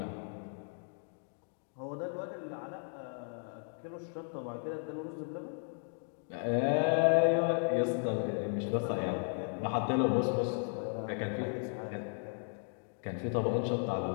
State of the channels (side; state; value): right; silent; 54 dB below the other